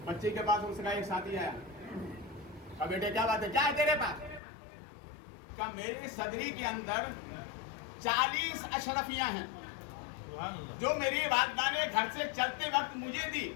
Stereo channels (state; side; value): drops out; right; at 4.4 s